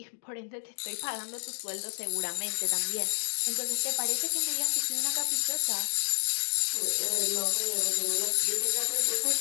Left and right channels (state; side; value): silent; right; digital silence